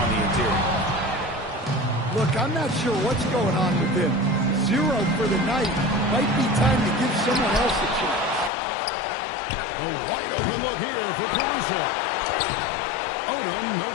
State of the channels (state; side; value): drops out; right; at 8.5 s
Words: the interior. Look, I'm not sure what's going on with him. 0 for the night. Might be time to give someone else a chance. A wide open look here for Caruso. Odom, no